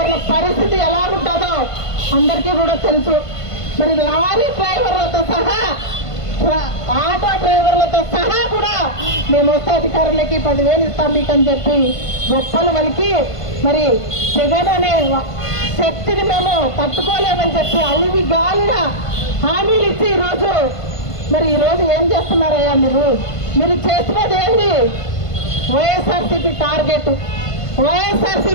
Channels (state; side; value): late; right; 1.5 ms